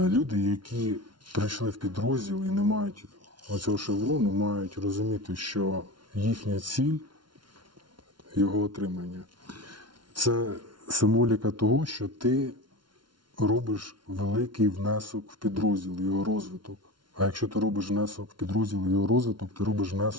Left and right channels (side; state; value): left; late; 0.72 ms